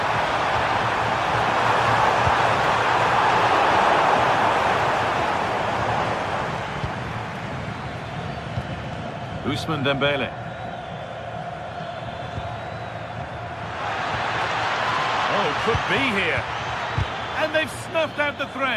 Ousmane Dembele. Oh, could be here. And they've snuffed out the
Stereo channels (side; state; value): both; identical; correlation 1.00